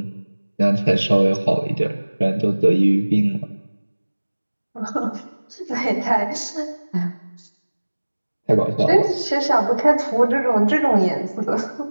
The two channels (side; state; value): both; inverted; correlation -1.00